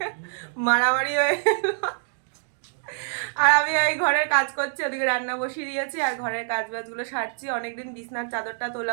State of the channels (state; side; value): silent; left; digital silence